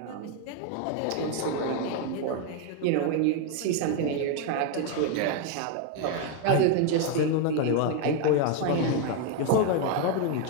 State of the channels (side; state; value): both; different; correlation 0.01